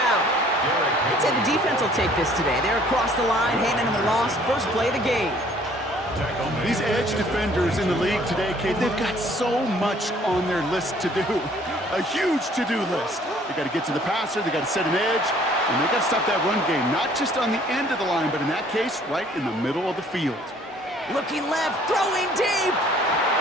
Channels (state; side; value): normal; both; correlation 0.57